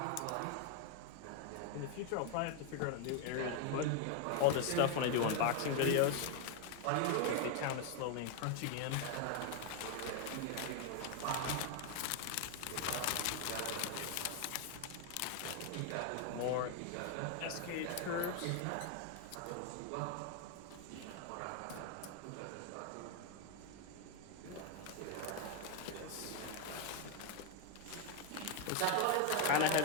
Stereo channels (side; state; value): both; different; correlation 0.01